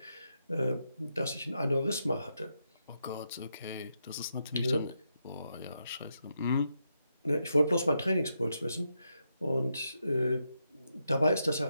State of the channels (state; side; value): inverted; both; correlation -0.83